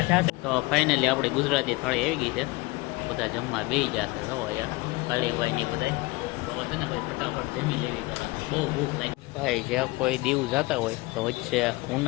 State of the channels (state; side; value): quieter; right; 23.0 dB